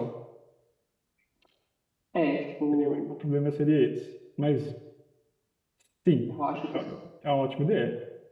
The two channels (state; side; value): identical; both; correlation 1.00